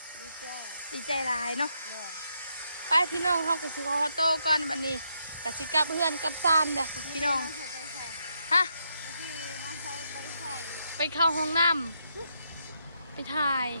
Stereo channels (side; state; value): both; inverted; correlation -0.79